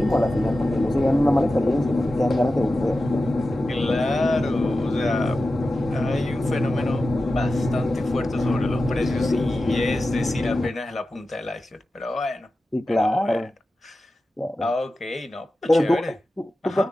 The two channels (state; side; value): normal; both; correlation 0.93